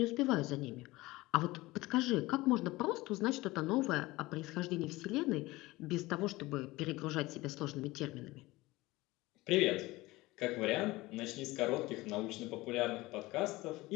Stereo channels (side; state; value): right; quieter; 20.0 dB